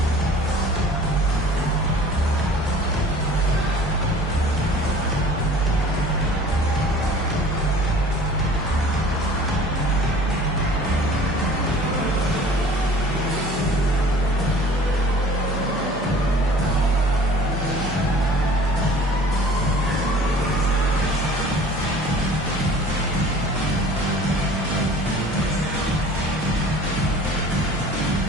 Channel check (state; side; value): normal; both; correlation 0.47